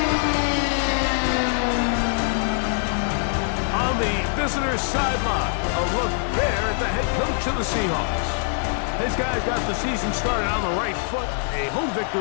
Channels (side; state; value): right; silent; 60 dB below the other